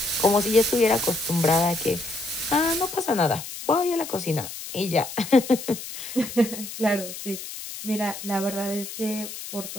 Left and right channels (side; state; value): left; noise; hiss, 10 dB below the sound